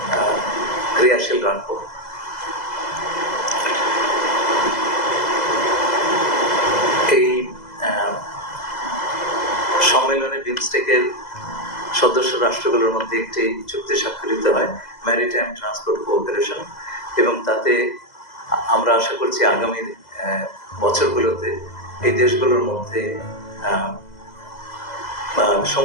ক্রিয়াশীল রাখবো। এই সম্মেলনে বিমস্টেকের সদস্য রাষ্ট্রগুলোর মধ্যে একটি চুক্তি স্বাক্ষরিত হয়, ম্যারিটাইম ট্রান্সপোর্ট কোঅপারেশন, এবং তাতে আমরা আশা করছি আগামী বছরগুলোতে এই দেশগুলোর মধ্যে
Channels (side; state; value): right; late; 2.0 ms